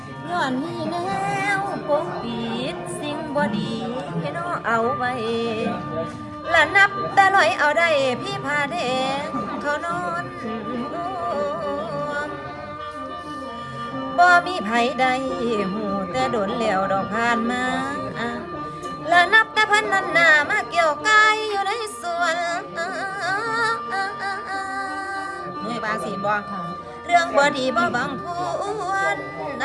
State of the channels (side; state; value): both; identical; correlation 1.00